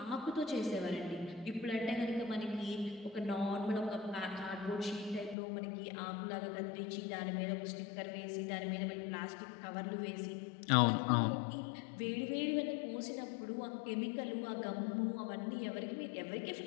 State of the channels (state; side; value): drops out; right; at 5.4 s